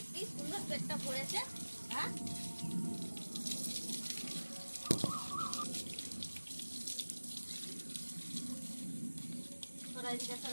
কি সুন্দর পেটটা ভরেছে। হ্যাঁ সরা এদিকে,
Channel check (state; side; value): inverted; both; correlation -1.00